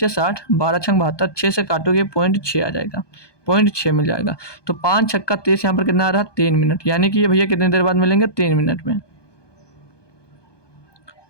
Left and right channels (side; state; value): right; late; 1.2 ms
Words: 60, 12 छंग 72, 6 से काटोगे 0.6 आ जाएगा, 0.6 मिल जाएगा। तो 5 छक्का 30, यहाँ पर कितना आ रहा है 3 मिनट, यानी कि ये भैया कितनी देर बाद मिलेंगे 3 मिनट में।